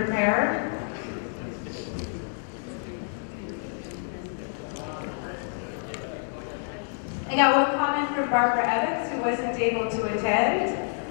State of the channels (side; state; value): right; silent; 60 dB below the other